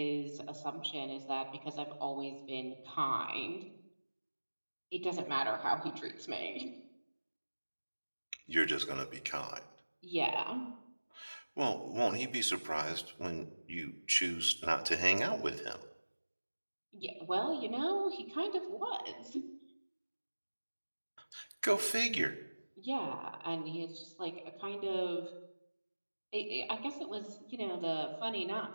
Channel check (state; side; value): inverted; both; correlation -1.00